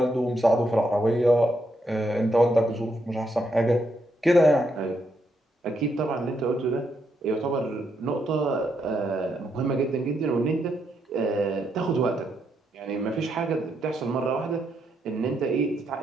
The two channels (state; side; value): normal; both; correlation 0.79